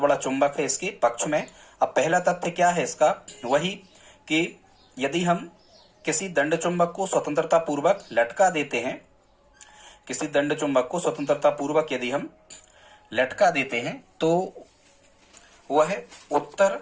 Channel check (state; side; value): identical; both; correlation 1.00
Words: चुंबक है इसके पक्ष में। अब पहला तथ्य क्या है इसका, वही कि यदि हम किसी दंड चुंबक को स्वतंत्रता पूर्वक लटका देते हैं, किसी दंड चुंबक को स्वतंत्रता पूर्वक यदि हम लटका देते हैं तो वह उत्तर